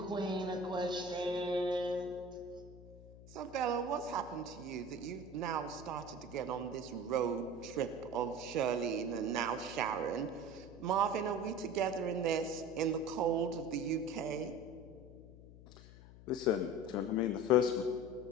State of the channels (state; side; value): noise; left; hum, 18 dB below the sound